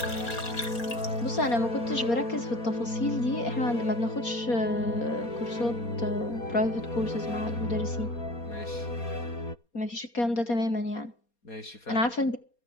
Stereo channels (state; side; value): late; right; 4.3 ms